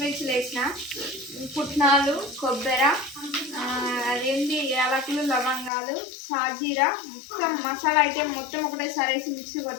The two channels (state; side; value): drops out; right; at 5.7 s